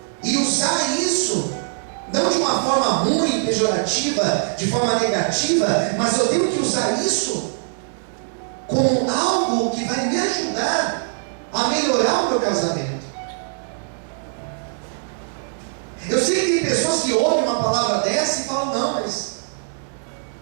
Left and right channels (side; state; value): left; silent; digital silence